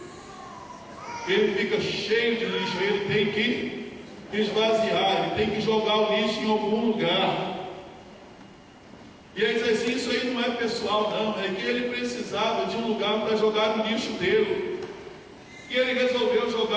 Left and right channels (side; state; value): both; identical; correlation 1.00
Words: Ele fica cheio de lixo, ele tem que esvaziar, ele tem que jogar o lixo em algum lugar. E ele diz assim: isso aí não é pessoal não, é que ele precisava de um lugar para jogar o lixo dele. E ele resolveu